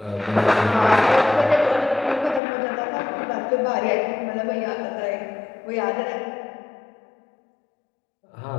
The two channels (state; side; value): drops out; right; at 2.4 s